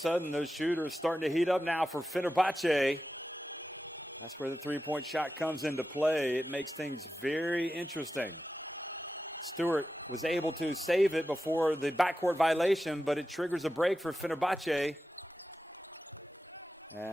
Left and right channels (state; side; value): normal; both; correlation 0.91